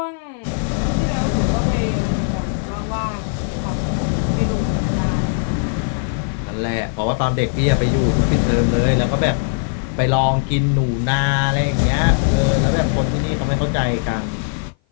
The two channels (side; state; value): right; silent; 56 dB below the other